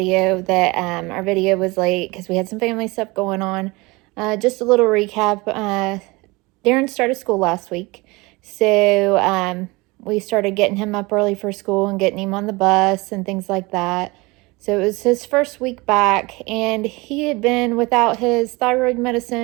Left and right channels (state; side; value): quieter; left; 24.1 dB